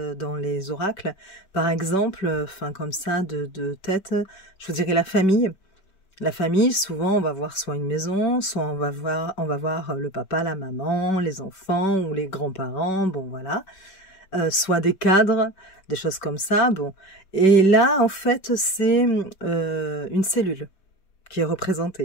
dans les oracles. Par exemple, comme ça, de tête, je vous dirais la famille. La famille, souvent, on va voir soit une maison, soit on va voir le papa, la maman, les enfants ou les grands-parents, bon voilà. Soit des cadres, des choses comme ça, bon. Et là, en fait, c'est une cellule qui est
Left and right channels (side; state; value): right; late; 5.3 ms